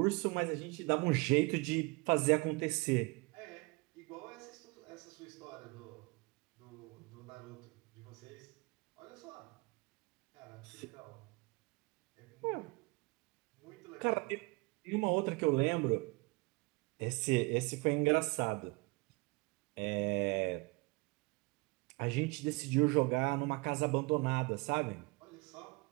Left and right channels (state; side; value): quieter; left; 26.8 dB